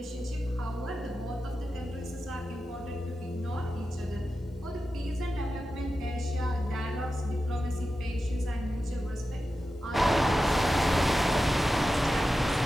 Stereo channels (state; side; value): normal; both; correlation 0.92